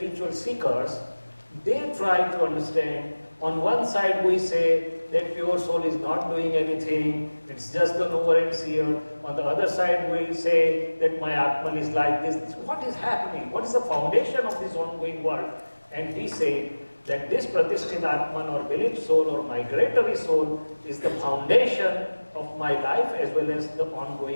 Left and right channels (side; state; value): both; inverted; correlation -1.00